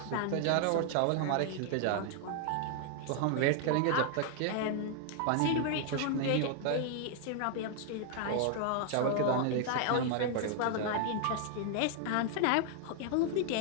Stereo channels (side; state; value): both; different; correlation 0.00